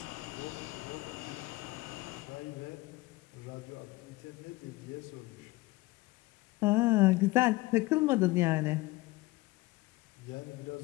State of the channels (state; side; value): quieter; right; 20.9 dB